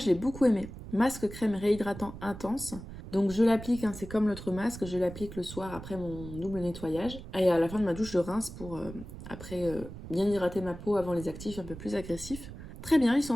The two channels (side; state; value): right; noise; rumble, 12 dB below the sound